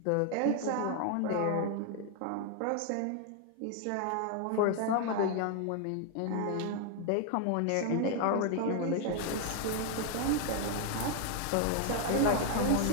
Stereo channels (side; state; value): both; different; correlation 0.00